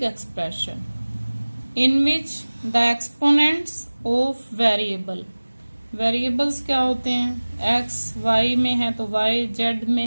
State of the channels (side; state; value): both; inverted; correlation -1.00